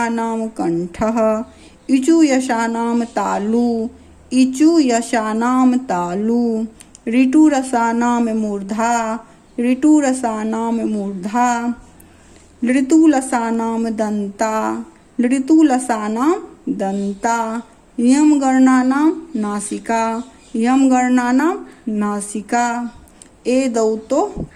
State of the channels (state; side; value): identical; both; correlation 1.00